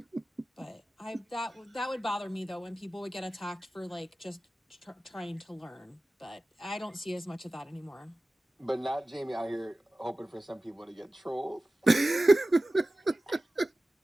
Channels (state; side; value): normal; both; correlation 0.96